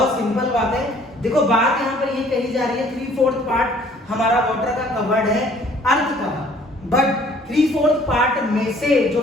सिंपल बात है। देखो बात यहाँ पर ये कही जा रही है 3/4 पार्ट हमारा वाटर का कवर्ड है अर्थ का, बट 3/4 पार्ट में से जो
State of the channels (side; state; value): both; normal; correlation 0.56